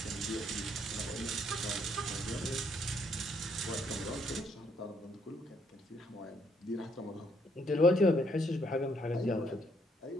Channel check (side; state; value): both; normal; correlation 0.70